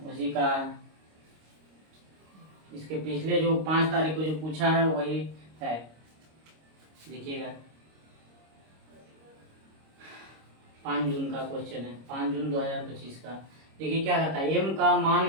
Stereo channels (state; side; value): late; left; 26 ms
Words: उसी का इसके पिछले जो 5 तारीख को जो पूछा है वही है। देखिएगा 5 जून का क्वेश्चन है, 5 जून 2025 का। देखिए क्या कहता है, एम का